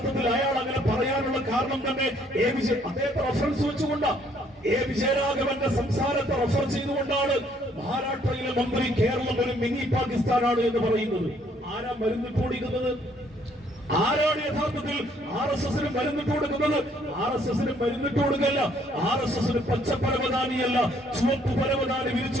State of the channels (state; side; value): normal; both; correlation 0.65